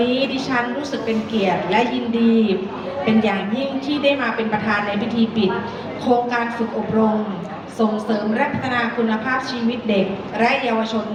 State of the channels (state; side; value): identical; both; correlation 1.00